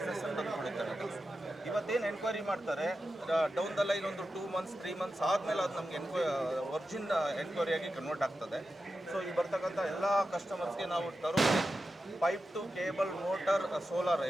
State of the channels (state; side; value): normal; both; correlation 0.91